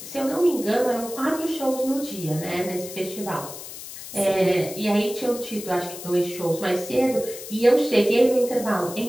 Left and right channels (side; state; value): left; noise; hiss, 12 dB below the sound